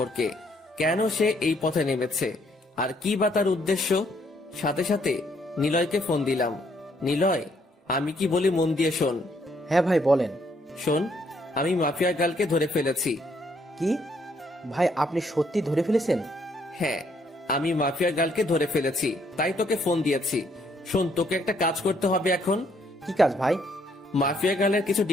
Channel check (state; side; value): normal; both; correlation 0.69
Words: কেন সে এই পথে নেমেছে আর কি বা তার উদ্দেশ্য। সাথে সাথে নিলয়কে ফোন দিলাম। নিলয়, আমি কি বলি মন দিয়ে শোন। হ্যাঁ ভাই বলেন। শোন, আমি মাফিয়া গার্লকে ধরে ফেলেছি। কি ভাই, আপনি সত্যি ধরে ফেলেছেন? হ্যাঁ, আমি মাফিয়া গার্লকে ধরে ফেলেছি, তাই তোকে ফোন দিয়েছি। শোন, তোকে একটা কাজ করতে হবে এখন। কি কাজ ভাই? মাফিয়া গার্লের কিছু